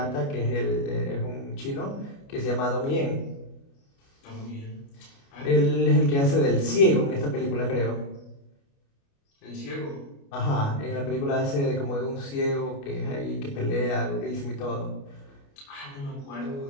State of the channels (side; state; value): right; late; 29 ms